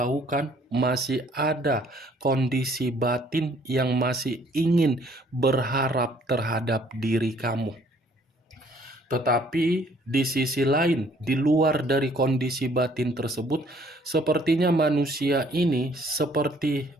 masih ada kondisi batin yang masih ingin berharap terhadap diri kamu. Tetapi di sisi lain, di luar dari kondisi batin tersebut, sepertinya manusia ini seperti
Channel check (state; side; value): normal; both; correlation 0.61